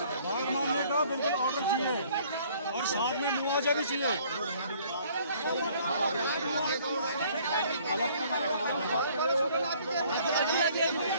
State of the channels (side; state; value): both; inverted; correlation -0.58